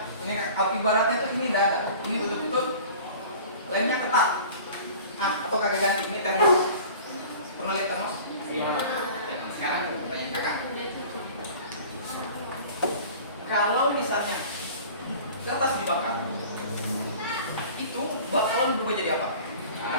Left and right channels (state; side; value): inverted; both; correlation -0.43